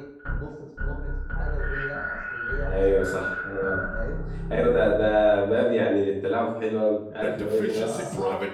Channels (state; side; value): identical; both; correlation 1.00